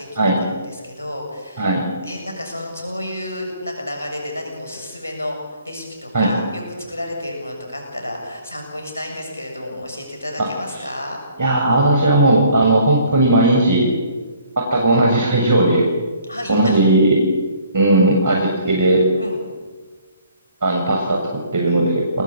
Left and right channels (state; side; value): inverted; both; correlation -0.58